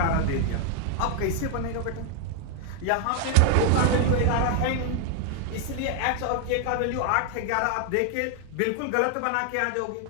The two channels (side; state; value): both; different; correlation 0.00